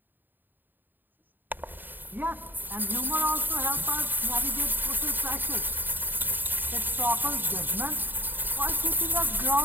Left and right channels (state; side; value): late; left; 0.091 ms